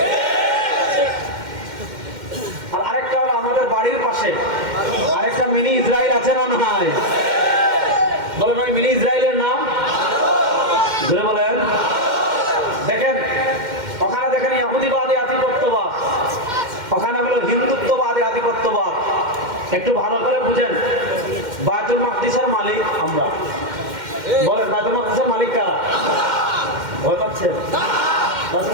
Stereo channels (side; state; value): left; late; 2.1 ms